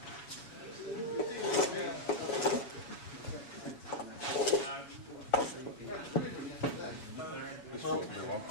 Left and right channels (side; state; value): right; late; 7.1 ms